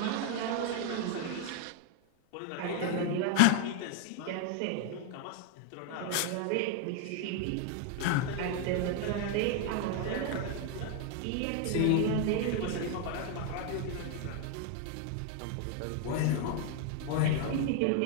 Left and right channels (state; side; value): different; both; correlation 0.01